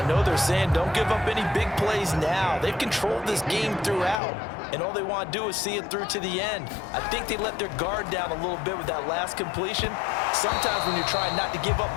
know they're saying don't give up any big plays now. They've controlled this game throughout, and all they want to do is see it through to the end. I think they let their guard down a little bit with that last completion. Sometimes when you're trying not to give up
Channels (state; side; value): drops out; right; at 4.2 s